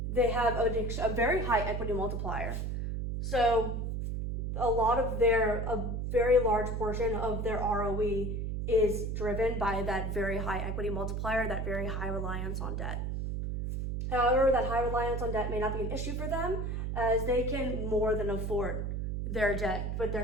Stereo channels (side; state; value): right; noise; hum, 2 dB below the sound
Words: They have a very high equity multiplier. So a very large portion of their ROE is driven by that very high equity multiplier, that very high reliance on debt. However, that high reliance on debt may not be an issue for them, as they can more than afford their debt, but